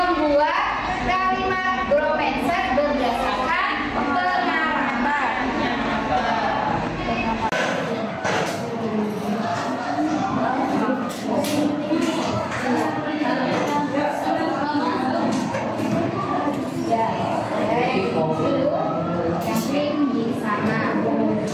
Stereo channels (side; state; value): both; identical; correlation 1.00